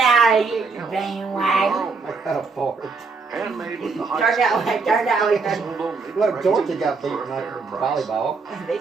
out of here, you bandwagon. I got a fart. Handmade with the Turn that way, turn that way. Look, Georgia got beaten up in volleyball. They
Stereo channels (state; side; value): quieter; left; 4.5 dB